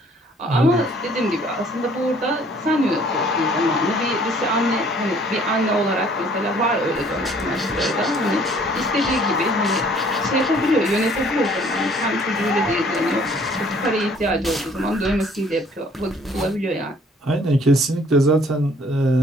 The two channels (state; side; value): normal; both; correlation 0.58